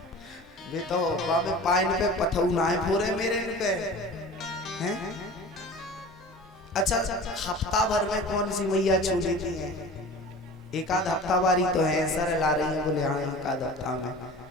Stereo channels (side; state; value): both; normal; correlation 0.39